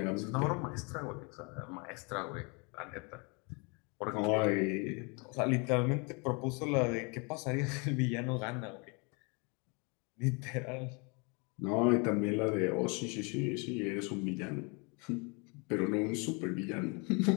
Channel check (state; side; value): quieter; right; 31.9 dB